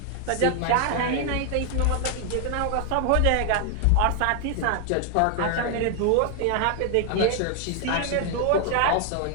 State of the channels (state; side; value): different; both; correlation 0.00